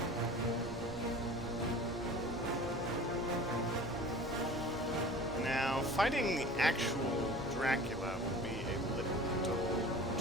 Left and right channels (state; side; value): normal; both; correlation 0.41